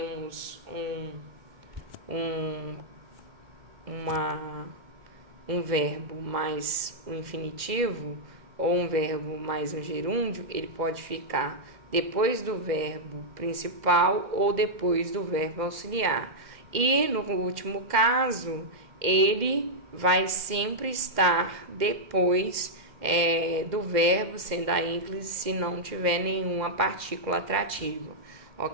um verbo mais um infinitivo, ou um verbo mais um gerúndio, ele pode ficar depois do verbo principal ou depois do verbo auxiliar. E no último caso, ele vai sempre estar depois do verbo, sendo a ênclise, se não tiver nenhuma partícula atrativa.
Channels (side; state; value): left; late; 2.1 ms